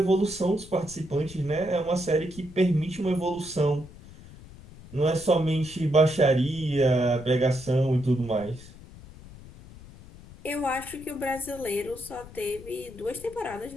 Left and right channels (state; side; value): noise; left; rumble, 18 dB below the sound